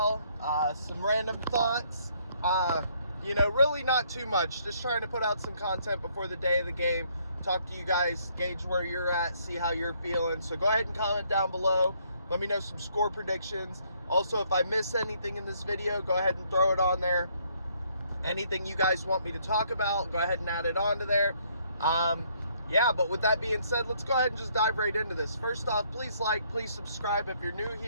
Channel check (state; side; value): inverted; both; correlation -0.67